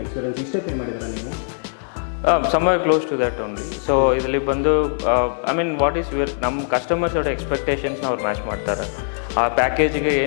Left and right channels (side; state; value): right; silent; digital silence